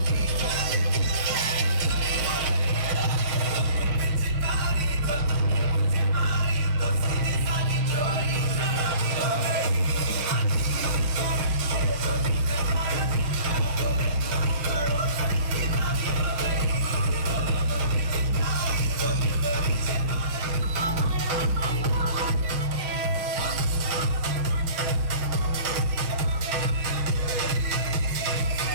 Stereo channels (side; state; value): left; late; 6.8 ms